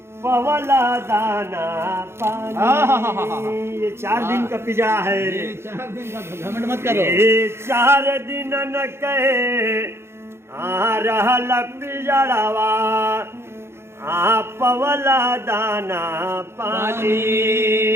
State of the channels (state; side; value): late; left; 0.12 ms